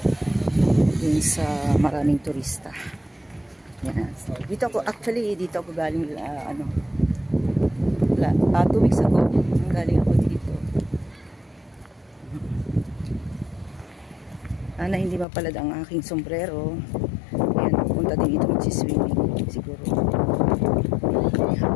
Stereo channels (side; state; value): right; drops out; at 15.2 s